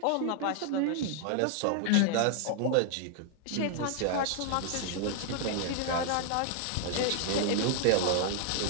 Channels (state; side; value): different; both; correlation 0.00